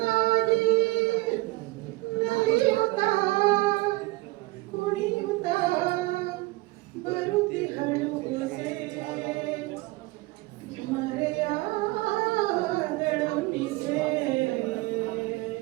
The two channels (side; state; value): left; quieter; 21.8 dB